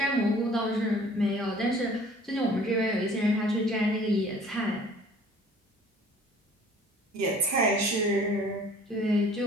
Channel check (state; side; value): normal; both; correlation 0.51